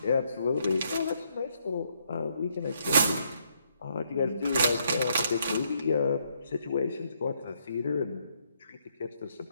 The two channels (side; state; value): both; inverted; correlation -0.73